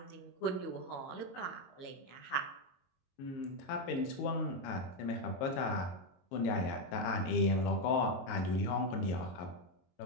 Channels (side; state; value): right; late; 22 ms